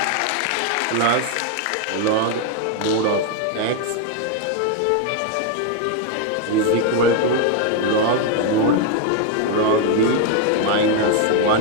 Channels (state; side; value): different; both; correlation 0.01